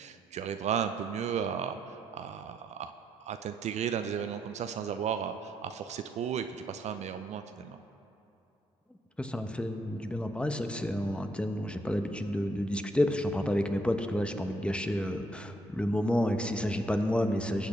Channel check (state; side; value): normal; both; correlation 0.74